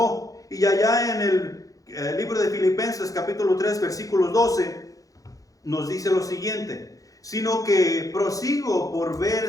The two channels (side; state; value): right; late; 0.17 ms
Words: Y allá en el libro de Filipenses capítulo 3 versículo 12 nos dice lo siguiente: sino que prosigo por